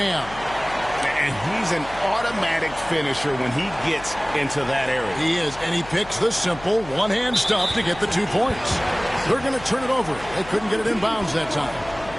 And he's an automatic finisher when he gets into that area. He is, and he picks the simple one-hand stuff to get the 2 points. They're going to turn it over. They couldn't get it in bounds that time.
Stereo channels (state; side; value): noise; left; hum, 17 dB below the sound